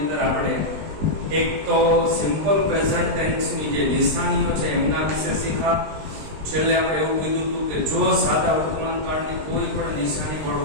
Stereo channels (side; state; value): left; late; 20 ms